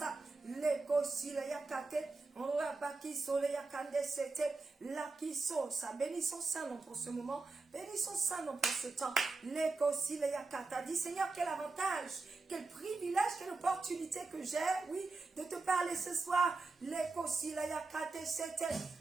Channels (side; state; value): left; quieter; 3.7 dB